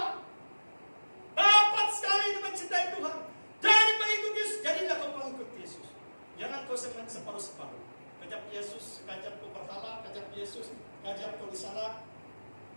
Dapat sekali itu mencintai Tuhan. Jadi pengikut Yesus. Jadilah kau pengikut Yesus. Jangan kau separuh-separuh. Kajap Yesus, kajap kau berhala, kajap Yesus, kajap kau di sana.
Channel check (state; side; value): inverted; both; correlation -1.00